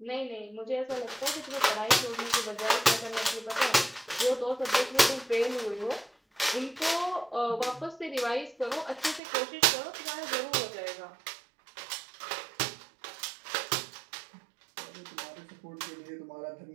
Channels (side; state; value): left; drops out; at 9.2 s